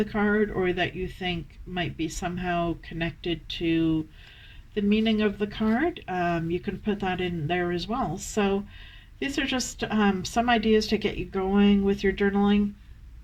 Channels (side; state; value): both; identical; correlation 1.00